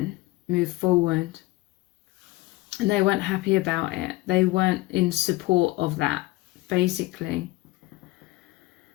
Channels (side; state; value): right; quieter; 20.1 dB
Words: move forward. And they weren't happy about it. They weren't in support of that, basically.